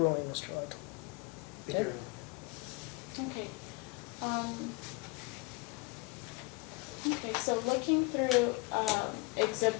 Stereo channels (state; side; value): quieter; right; 25.4 dB